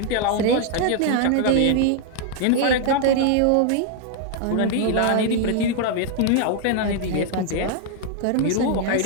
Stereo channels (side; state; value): both; different; correlation 0.00